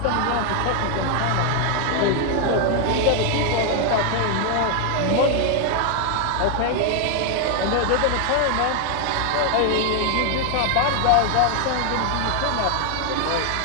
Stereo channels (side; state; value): both; different; correlation 0.00